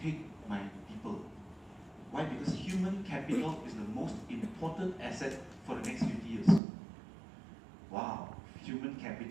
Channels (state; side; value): drops out; left; at 6.6 s